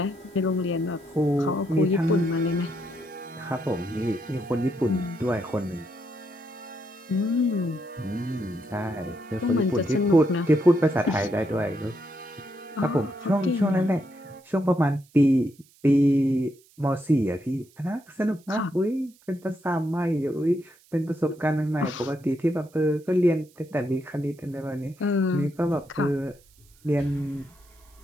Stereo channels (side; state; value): right; noise; hiss, 29 dB below the sound